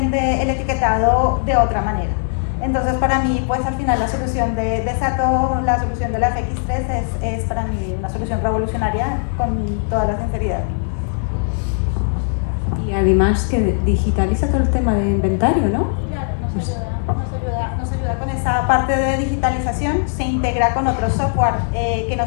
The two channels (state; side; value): silent; right; 62 dB below the other